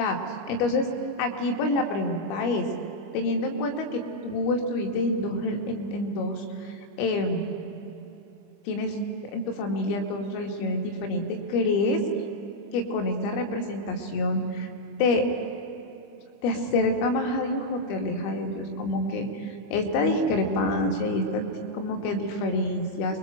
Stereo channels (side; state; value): right; late; 25 ms